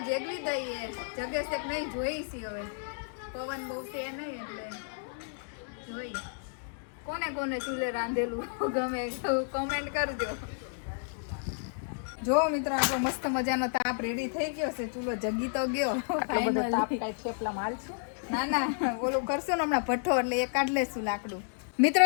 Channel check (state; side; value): silent; right; digital silence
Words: જેગવી દઈએ જગેશ એક નહીં જોઈશી હવે પવન બહુ છે નહીં એટલે જોઈ કોને કોને ચૂલે રાંધેલું ગમે કોમેન્ટ કરજો જો મિત્રો આપણો મસ્ત મજાનો તાપ રેડી થઈ ગયો છે ચૂલો જગી તો ગયો ના ના ઓલું કરશું ને હમણાં ભઠ્ઠો એટલે એ કાઢ લેશું લાકડું